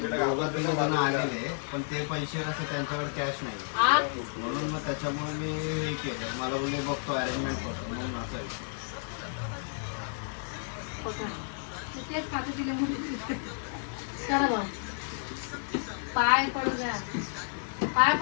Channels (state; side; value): silent; right; 57 dB below the other